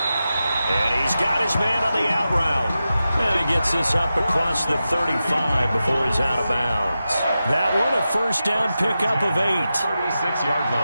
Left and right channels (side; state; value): both; inverted; correlation -0.91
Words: And he's got his man on the out route. And he gets this up across the 35 before he's out of bounds. That one a first down pickup of 8. 36-yard